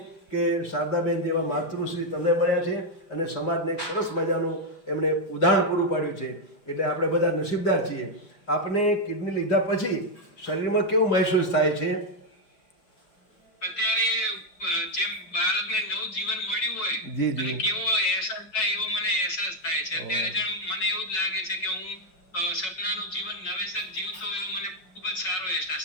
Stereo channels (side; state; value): right; late; 5.4 ms